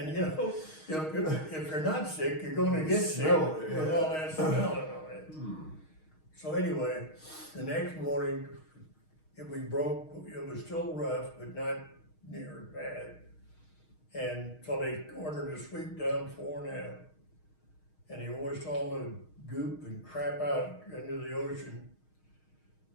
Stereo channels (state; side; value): late; right; 6.4 ms